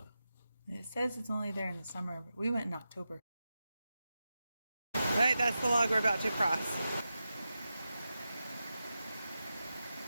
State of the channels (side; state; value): both; inverted; correlation -0.91